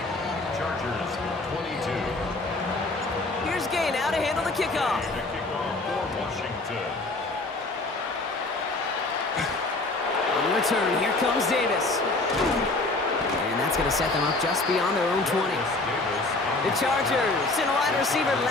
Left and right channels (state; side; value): quieter; right; 3.1 dB